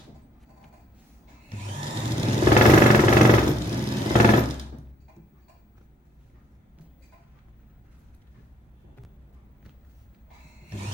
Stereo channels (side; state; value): both; normal; correlation 0.66